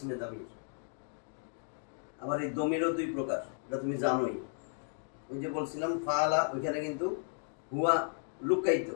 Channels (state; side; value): silent; right; 55 dB below the other